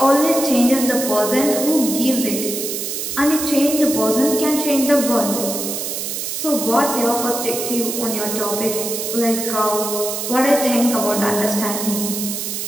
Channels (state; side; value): noise; right; hiss, 4 dB below the sound